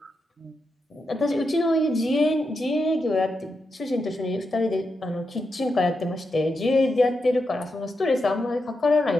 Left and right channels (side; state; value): both; normal; correlation 0.86